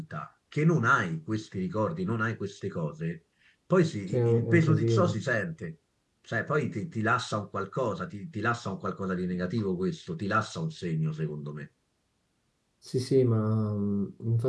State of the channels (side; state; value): both; identical; correlation 1.00